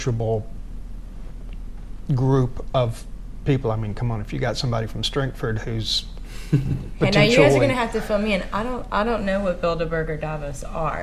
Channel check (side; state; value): both; identical; correlation 1.00